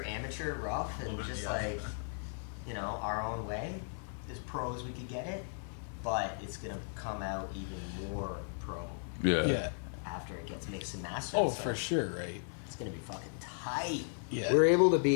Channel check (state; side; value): silent; right; 54 dB below the other